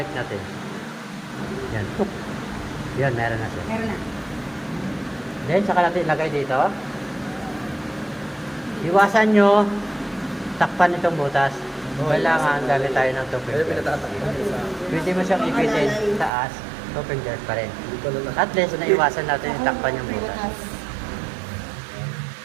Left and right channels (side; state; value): left; drops out; at 16.3 s